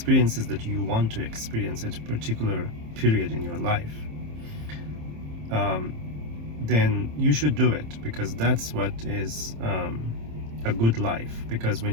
that you want to experience at a particular period in your life, then you should do it, because that's what is a good life. Because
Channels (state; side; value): late; left; 27 ms